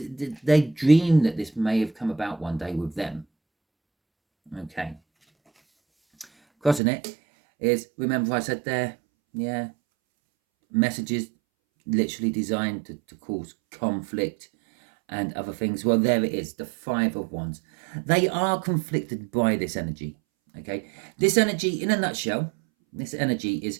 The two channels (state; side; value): drops out; left; at 6.8 s